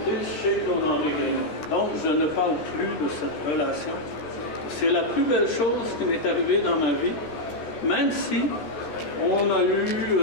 chez Claude-Henri Grignon. Donc, je ne parle plus de cette relation. C'est la plus belle chose qui m'est arrivée dans ma vie, même si on a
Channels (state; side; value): late; right; 13 ms